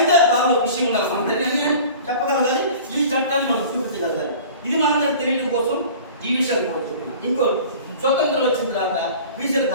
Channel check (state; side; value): inverted; both; correlation -0.42